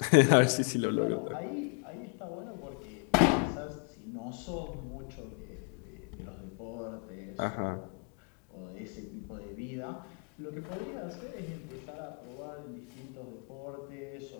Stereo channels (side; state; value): right; quieter; 37.5 dB